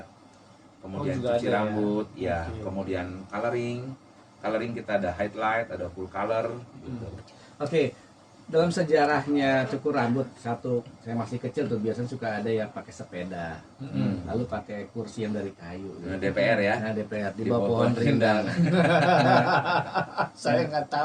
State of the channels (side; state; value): both; identical; correlation 1.00